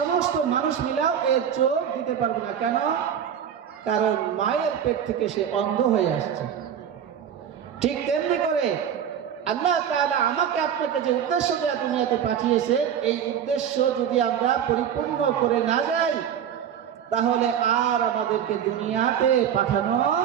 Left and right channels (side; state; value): left; quieter; 8.8 dB